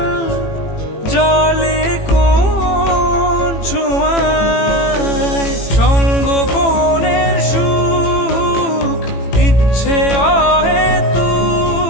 জলে কোন ছোঁয়ায় সঙ্গোপনের সুখ, ইচ্ছে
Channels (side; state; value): right; late; 18 ms